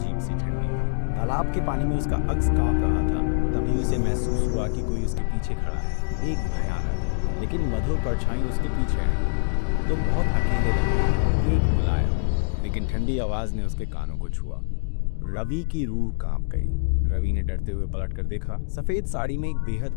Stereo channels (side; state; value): right; silent; digital silence